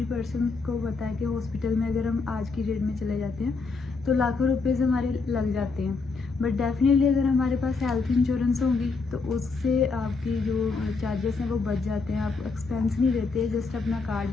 पर्सन को पता है कि हॉस्पिटल में अगर हम आज की डेट में चले जाते हैं तो लाखों रुपए हमारे लग जाते हैं। बट डेफिनेटली अगर हमारे पास हेल्थ इंश्योरेंस होगी तो उससे आपकी जो चार्जेस हैं वो बच जाते हैं। आप एक्सपेंस नहीं देते, जस्ट अपना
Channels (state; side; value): quieter; right; 4.3 dB